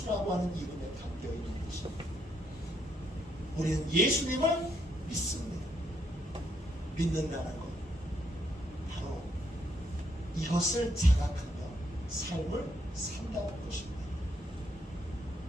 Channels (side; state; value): both; normal; correlation 0.74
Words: 하는 이름에 담겨있는 것입니다. 우리는 예수님을 믿습니다. 믿는다는 것, 바로 이것을 자각하며 삶을 산다는 것입니다.